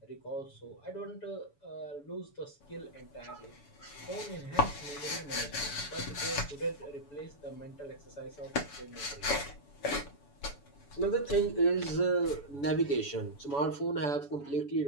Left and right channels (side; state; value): right; late; 7.0 ms